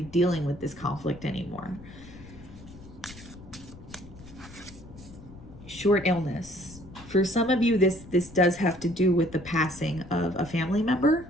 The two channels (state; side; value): noise; left; rumble, 18 dB below the sound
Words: dealing with this conflict anymore. Short illness. For some of you, this does have to do with the passing of a family member